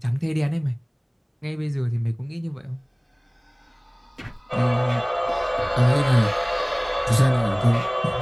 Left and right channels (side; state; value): both; identical; correlation 1.00